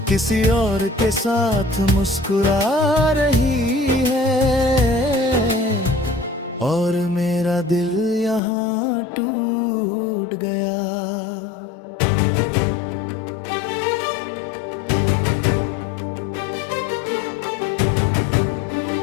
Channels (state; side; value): drops out; right; at 8.4 s